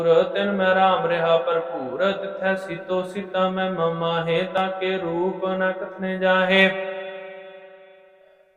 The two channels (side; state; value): both; identical; correlation 1.00